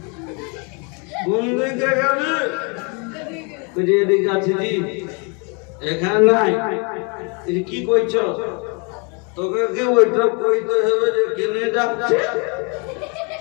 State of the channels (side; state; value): right; quieter; 33.8 dB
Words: কোন দিকে গেলে, বুঝি এদিকে আছে জি, এখানে নাই, কি কইছ? তোকে কি ওইটা কইতে হবে যে কেনে যাচ্ছে?